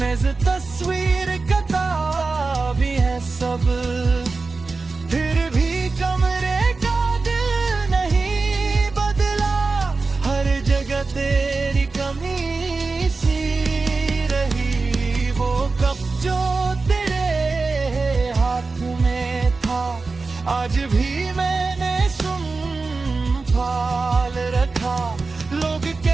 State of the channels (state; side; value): quieter; left; 4.0 dB